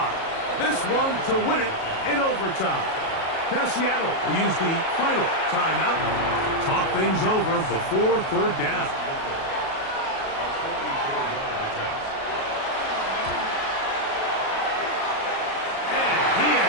This one to win it in overtime. Now Seattle will use the final timeout. Talk things over before 3rd down.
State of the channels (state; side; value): late; right; 37 ms